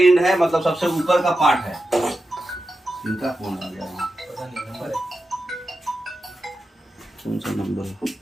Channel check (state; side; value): normal; both; correlation 0.91